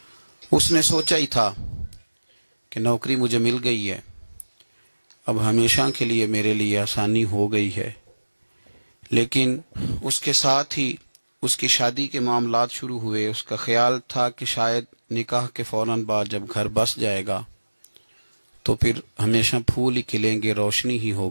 اس نے سوچا ہی تھا کہ نوکری مجھے مل گئی ہے، اب ہمیشہ کے لیے میرے لیے آسانی ہو گئی ہے، لیکن اس کے ساتھ ہی اس کی شادی کے معاملات شروع ہوئے۔ اس کا خیال تھا کہ شاید نکاح کے فوراً بعد جب گھر بس جائے گا تو پھر ہمیشہ پھول ہی کھلیں گے، روشنی ہی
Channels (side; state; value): both; inverted; correlation -1.00